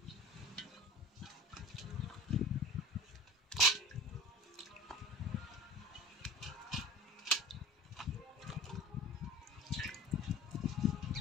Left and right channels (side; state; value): both; normal; correlation 0.39